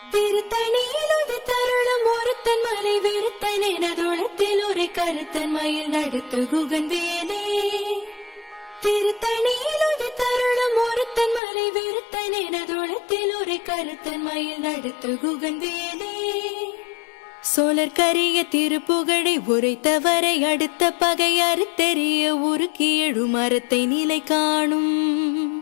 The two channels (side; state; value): right; drops out; at 11.4 s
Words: திருத்தணியிலுது தருணம் ஒருத்தன் மலை வெறுத்தன் எனதுளத்தில் ஒரு கருத்தன் மயில் நடத்து குகன் வேலே திருத்தணியிலுது தருணம் ஒருத்தன் மலை வெறுத்தன் எனதுளத்தில் ஒரு கருத்தன் மயில் நடத்து குகன் வேலே சோழர் கரிய திருப்புகழை உரைத்தவரை அடுத்த பகை அறுத்தெறிய உருக்கி எழு மரத்தை நிலை காணும்.